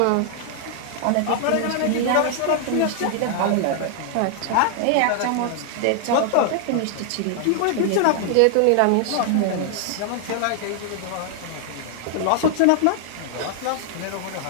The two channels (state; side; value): different; both; correlation 0.00